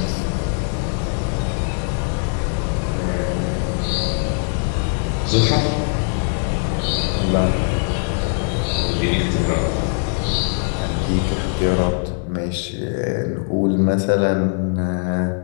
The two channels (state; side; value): silent; right; 57 dB below the other